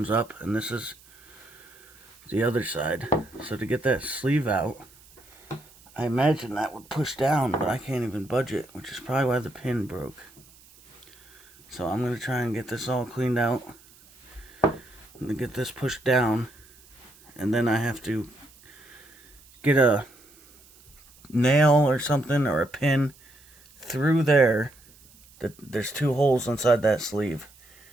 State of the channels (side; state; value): right; noise; hiss, 26 dB below the sound